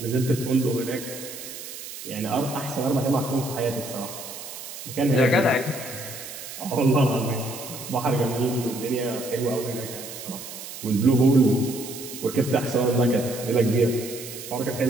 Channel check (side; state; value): right; noise; hiss, 11 dB below the sound